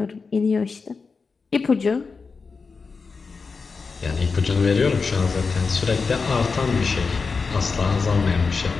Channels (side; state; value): right; quieter; 4.7 dB